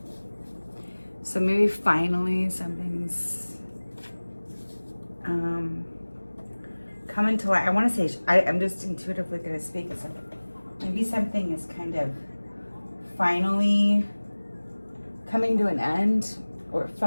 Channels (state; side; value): inverted; both; correlation -1.00